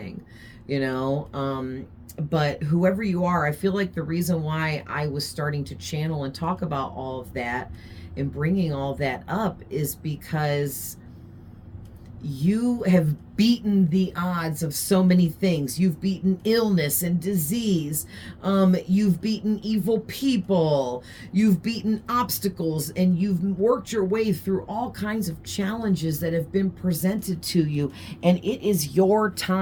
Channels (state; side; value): identical; both; correlation 1.00